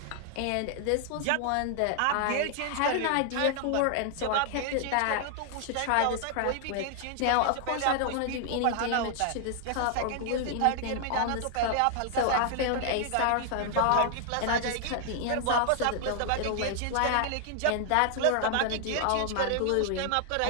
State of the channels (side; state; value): both; different; correlation 0.00